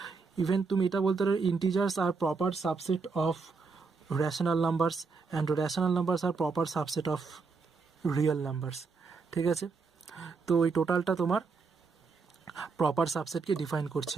ইভেন তুমি এটা বলতে পারো integers are proper subset of rational numbers and rational numbers are proper subset of real numbers. ঠিক আছে, তো এই টোটালটা তোমার প্রপার সাবসেটকে ডিফাইন করছে।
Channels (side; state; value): left; quieter; 4.6 dB